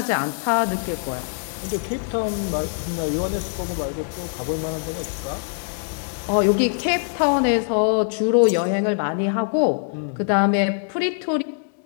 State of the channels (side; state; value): right; silent; digital silence